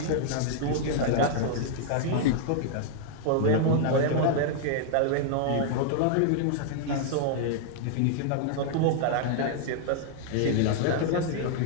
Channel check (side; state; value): both; different; correlation 0.00